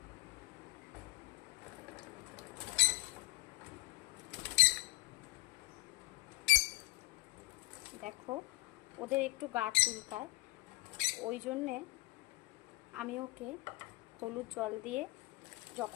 দেখো, ওদের একটু গা চুলকায়, ওই জন্যে আমি ওকে হলুদ জল দিয়ে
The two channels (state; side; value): quieter; right; 22.2 dB